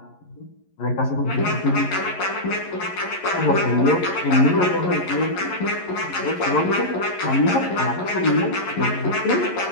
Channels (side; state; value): right; late; 11 ms